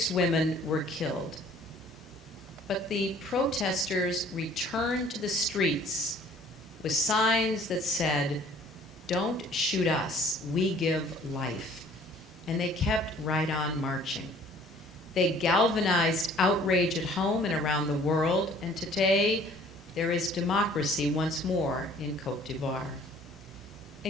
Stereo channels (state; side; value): normal; both; correlation 0.54